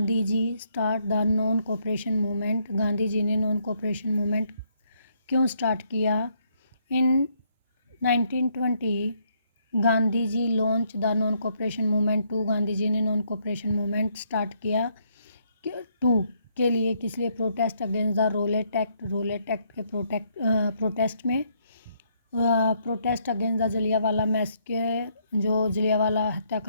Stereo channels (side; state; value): both; inverted; correlation -0.72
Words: ji start the non cooperation movement? Gandhi ji ने non cooperation movement क्यों start किया? In 1920 Gandhi ji launch the non cooperation movement to, Gandhi ji ने non cooperation movement start किया to के लिए, किस लिए? Protest against the Rowlatt Act के प्रोटेस्ट में, protest against the Jallianwala massacre, जो जलियांवाला